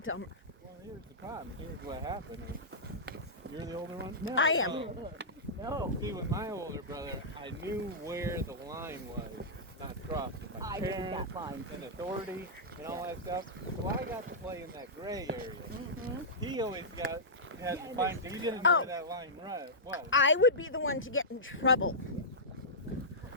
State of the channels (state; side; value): normal; both; correlation -0.14